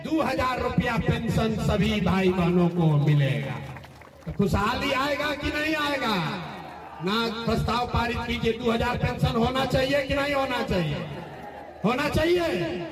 2000 रुपया पेंशन सभी भाई बहनों को मिलेगा। तो खुशहाली आएगा कि नहीं आएगा? ना प्रस्ताव पारित कीजिए। 2000 पेंशन होना चाहिए कि नहीं होना चाहिए? होना चाहिए।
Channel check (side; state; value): both; identical; correlation 1.00